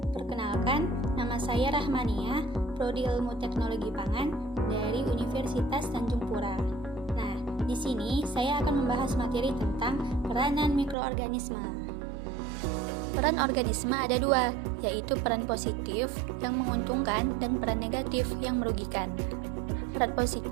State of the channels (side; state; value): left; drops out; at 11.0 s